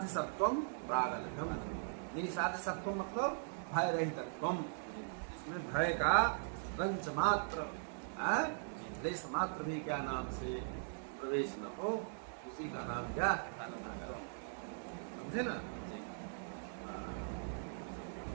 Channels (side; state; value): left; silent; digital silence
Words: सत्वम प्रागल्भ्यम। निसाध्य सत्वम मतलब भय रहितत्वम, इसमें भय का रंच मात्र, लेश मात्र भी क्या नाम से प्रवेश न हो, उसी का नाम क्या? समझे ना?